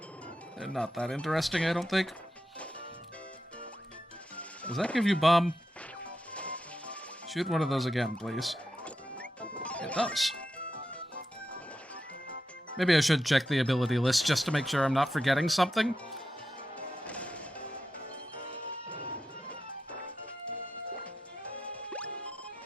They're not that interesting, I don't think. Does that give you bomb? Shoot one of those again, please. It does. Maybe I should check the ability list just to make sure I'm not forgetting something.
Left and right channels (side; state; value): both; normal; correlation 0.88